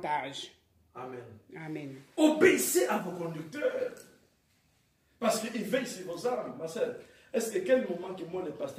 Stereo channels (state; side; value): identical; both; correlation 1.00